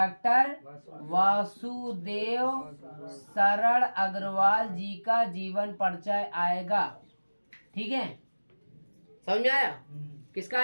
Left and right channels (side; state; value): both; inverted; correlation -1.00